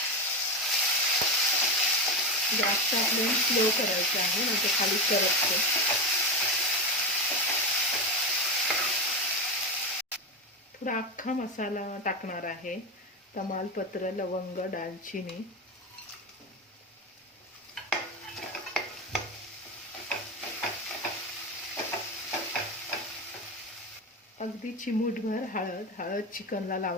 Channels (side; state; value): both; normal; correlation 0.16